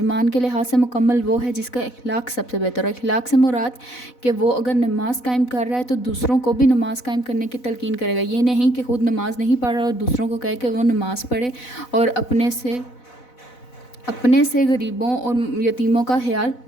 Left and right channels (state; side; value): late; right; 4.0 ms